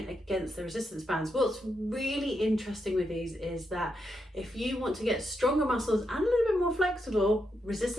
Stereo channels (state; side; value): normal; both; correlation 0.83